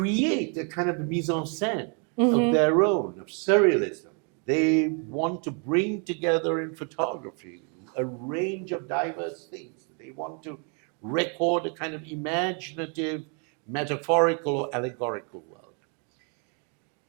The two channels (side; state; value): left; quieter; 39.0 dB